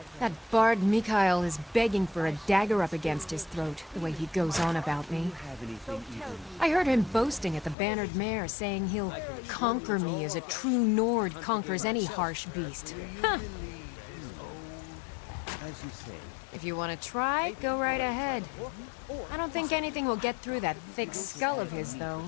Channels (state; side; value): drops out; right; at 7.8 s